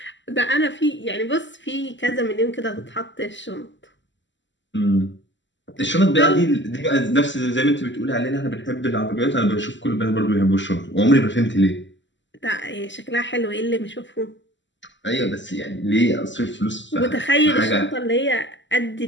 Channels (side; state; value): right; late; 0.54 ms